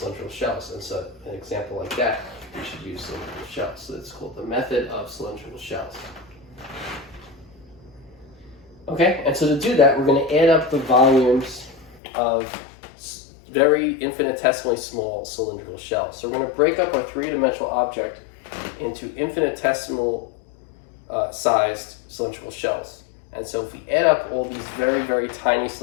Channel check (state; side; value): drops out; right; at 12.0 s